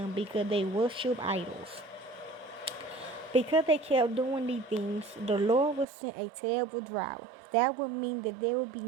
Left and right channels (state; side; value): drops out; left; at 5.9 s